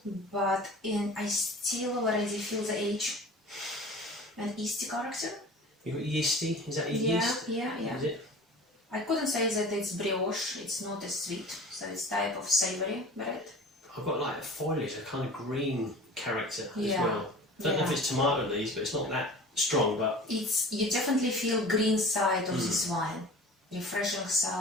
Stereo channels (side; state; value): both; normal; correlation 0.40